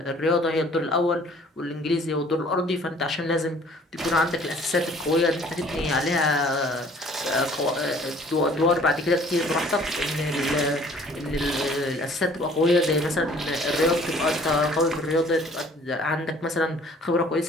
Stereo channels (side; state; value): both; normal; correlation 0.54